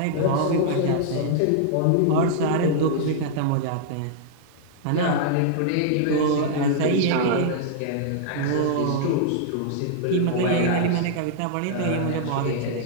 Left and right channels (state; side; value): different; both; correlation -0.01